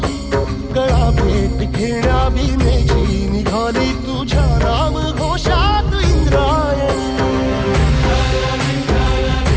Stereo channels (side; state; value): both; identical; correlation 1.00